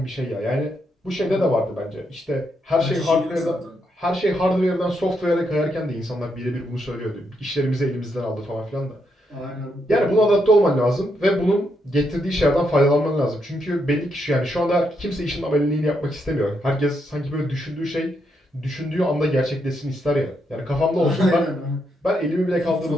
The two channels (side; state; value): both; normal; correlation 0.79